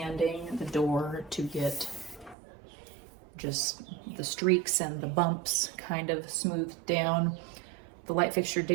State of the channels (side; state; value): left; drops out; at 2.4 s